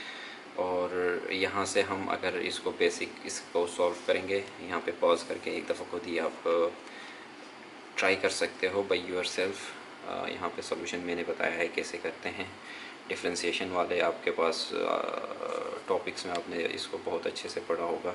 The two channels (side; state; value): both; identical; correlation 1.00